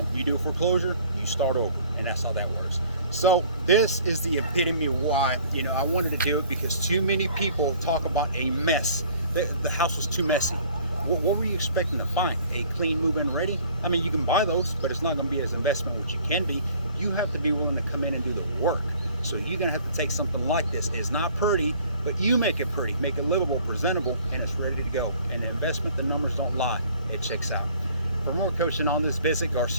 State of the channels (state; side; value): inverted; both; correlation -0.54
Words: you do a foreclosure, you start over, and that's how that works. So this is the epitome of why, you know, I wanted to do it, because too many people talk about a mess. The house was too messy. What were you expecting to find? A clean move-in ready? I mean, you can buy those, but it's not going to be as investment as you can be. You have to be willing to come in and do the work. So you're going to have to take something like this. It's not pretty, but you make it pretty, make it livable, presentable, and it's ready to go. And the investment, the numbers don't lie. It checks out. For more coaching on this, visit